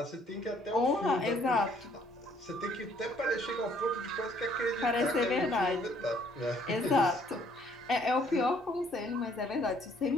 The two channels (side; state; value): both; normal; correlation 0.63